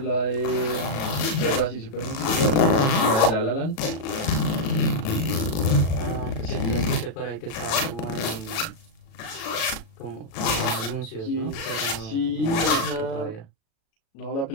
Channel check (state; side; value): late; right; 36 ms